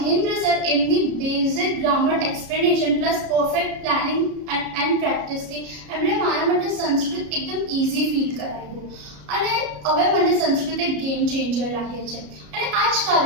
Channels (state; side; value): late; left; 33 ms